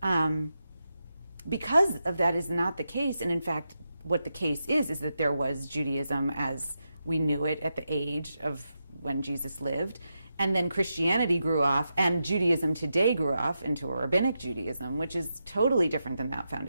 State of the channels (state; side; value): inverted; both; correlation -0.87